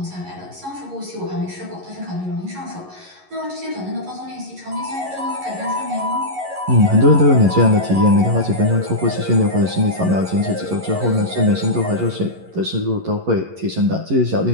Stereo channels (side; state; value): left; late; 11 ms